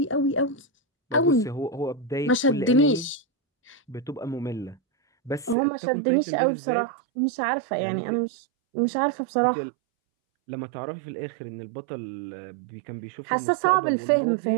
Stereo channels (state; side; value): drops out; left; at 5.6 s